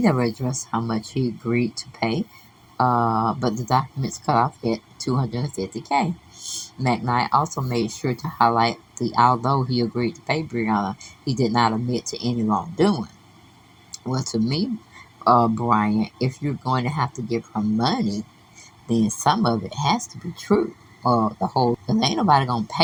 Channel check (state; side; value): identical; both; correlation 1.00